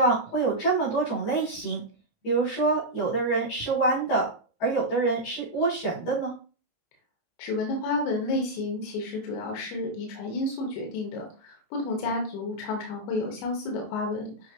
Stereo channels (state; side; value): late; right; 19 ms